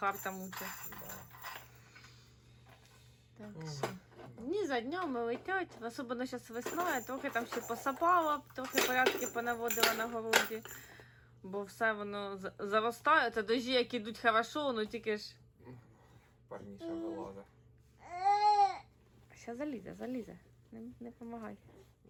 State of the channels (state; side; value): identical; both; correlation 1.00